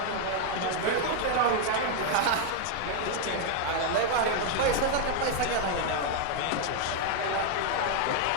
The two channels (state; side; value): different; both; correlation 0.00